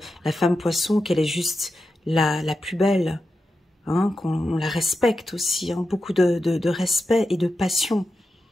la femme poisson, qu'elle est juste la plus belle. Hein, qu'on la respecte aussi. Hein, beaucoup de respect et de passion.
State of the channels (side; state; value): both; normal; correlation 0.90